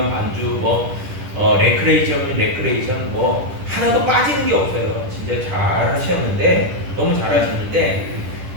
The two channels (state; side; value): late; left; 10 ms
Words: 반주, 뭐 레크레이션이면 레크레이션, 뭐 하나도 빠지는 게 없어요. 진짜 잘 하셨는데 너무 잘 하셨는데